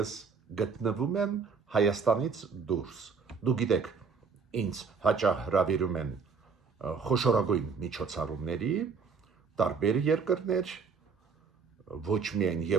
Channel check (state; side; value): quieter; left; 5.4 dB